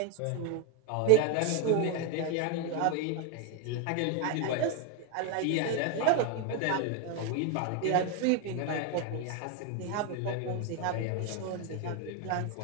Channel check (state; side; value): different; both; correlation 0.01